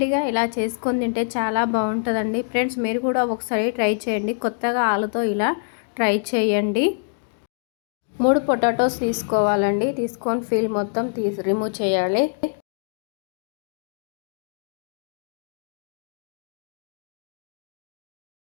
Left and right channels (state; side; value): silent; right; digital silence